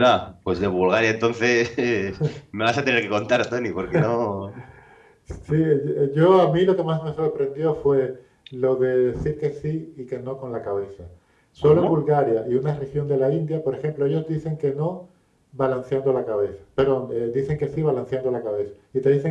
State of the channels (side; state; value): both; identical; correlation 1.00